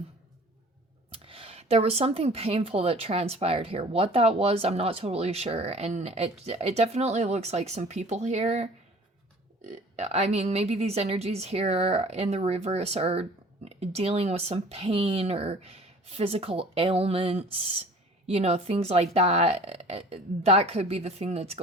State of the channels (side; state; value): both; normal; correlation 0.47